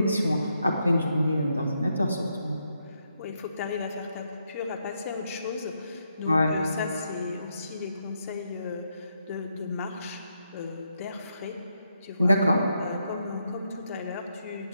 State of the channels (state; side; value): inverted; both; correlation -0.80